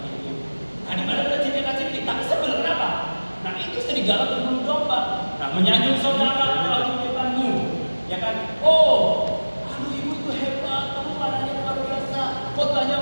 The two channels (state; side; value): inverted; both; correlation -1.00